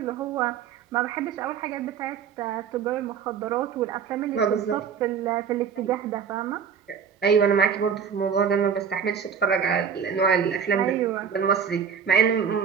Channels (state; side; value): quieter; left; 7.1 dB